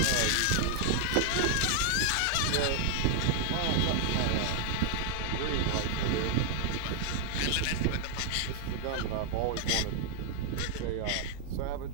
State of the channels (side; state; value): both; different; correlation 0.00